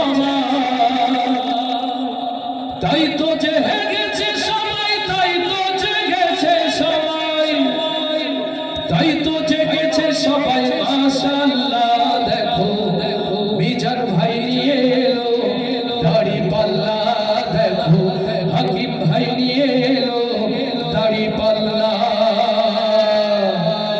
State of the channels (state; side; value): identical; both; correlation 1.00